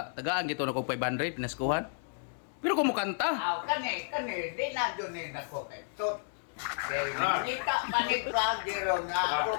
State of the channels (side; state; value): right; silent; digital silence